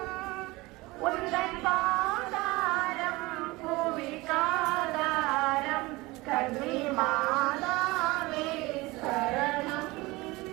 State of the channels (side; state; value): left; quieter; 21.9 dB